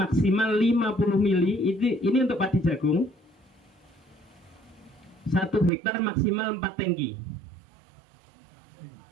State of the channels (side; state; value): left; drops out; at 5.7 s